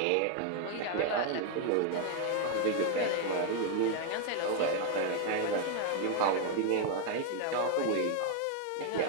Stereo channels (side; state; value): both; different; correlation 0.01